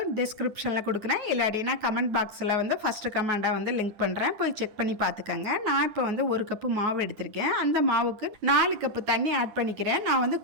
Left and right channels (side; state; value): left; late; 9.5 ms